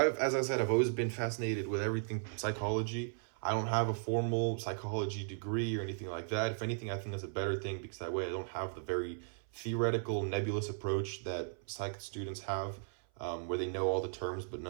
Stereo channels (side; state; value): left; silent; 54 dB below the other